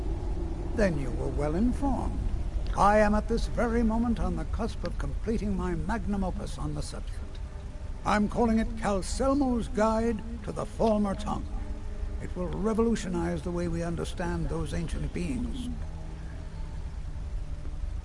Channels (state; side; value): identical; both; correlation 1.00